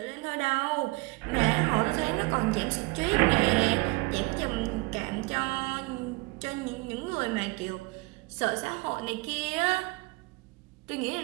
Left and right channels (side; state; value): left; quieter; 25.4 dB